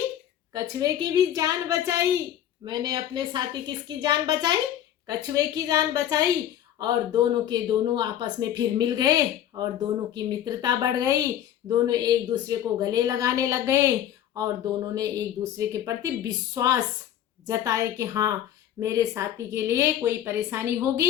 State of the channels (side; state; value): right; quieter; 11.0 dB